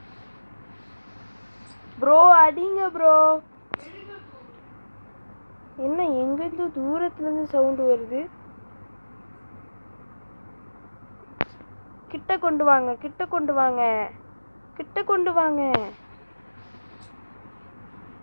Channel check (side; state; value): both; inverted; correlation -1.00